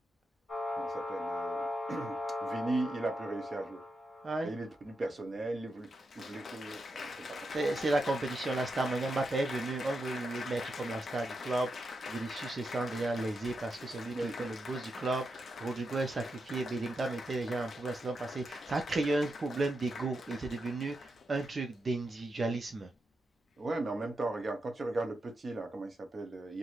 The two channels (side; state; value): both; normal; correlation 0.86